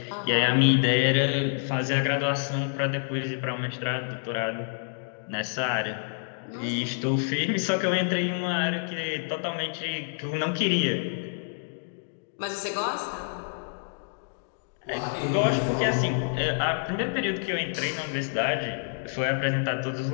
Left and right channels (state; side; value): silent; right; digital silence